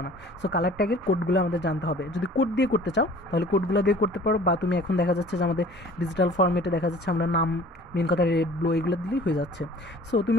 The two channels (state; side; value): normal; both; correlation 0.48